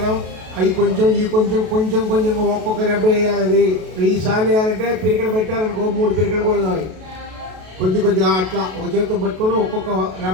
అవి కొంచెం ఈ కొంచెం కొంచెం కొంచెం ఒక్కొక్క రెబ్బ వేయాలి. అది 1000 సార్లు వేయాలంటే పిరికడ పెట్టారనుకో 3 పిరికలు కూడా కావాలి. కొద్దిగా అట్లా ఒక చేతితో పట్టుకొని ఒక్కొక్క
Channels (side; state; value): left; late; 32 ms